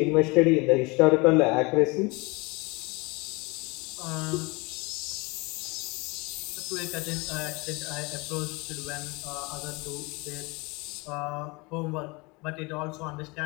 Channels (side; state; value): right; quieter; 26.5 dB